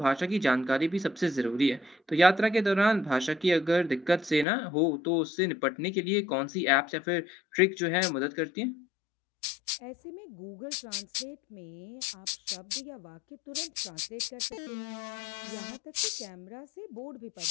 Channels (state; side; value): drops out; right; at 4.5 s